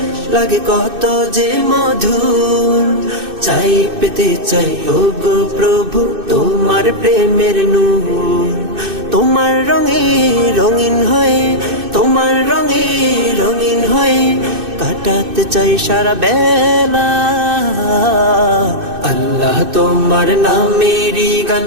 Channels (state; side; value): late; left; 2.6 ms